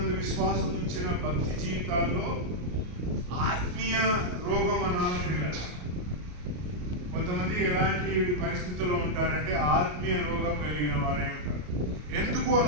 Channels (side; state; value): left; late; 33 ms